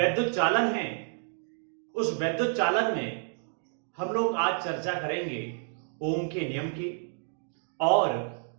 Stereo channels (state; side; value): silent; left; 58 dB below the other